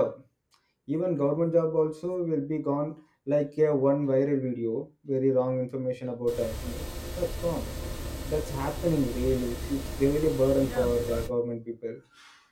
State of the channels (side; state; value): both; identical; correlation 1.00